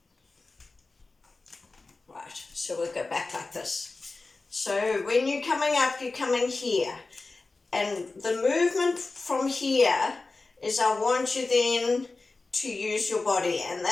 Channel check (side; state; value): right; quieter; 3.6 dB